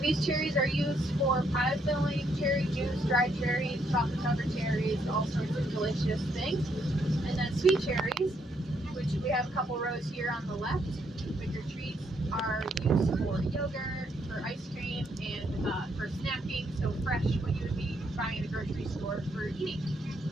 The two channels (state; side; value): normal; both; correlation 0.74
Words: cherries are used for pie filling, cherry juice, dried cherries, chocolate covered cherries, all sorts of delicious things. And then sweet cherries, which we have a couple rows here on the left. Bigger treats are used for yogurt, for ice cream, and for snacking. So fresh, what you would be buying at a grocery store for eating.